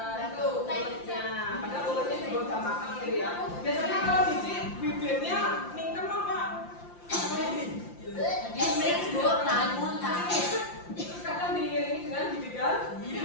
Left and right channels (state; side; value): late; right; 5.8 ms